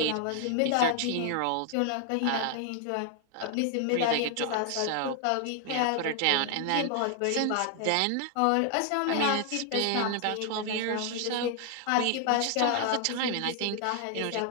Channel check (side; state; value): both; different; correlation 0.00